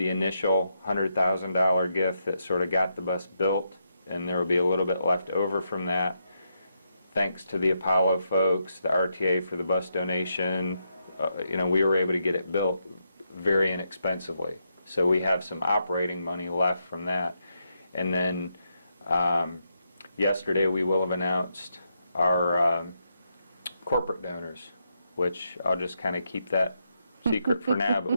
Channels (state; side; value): inverted; both; correlation -0.82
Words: initial $100,000 gift that sort of got the bus built, and there will be a little bit left over from that. Thanks to the Apollo folks, the RTA for the bus donation, we were able to get it built very inexpensively. So we have some operating money left from that. And then yesterday we will have announced our corporate donors, which I'll just kind of keep that secret for now, but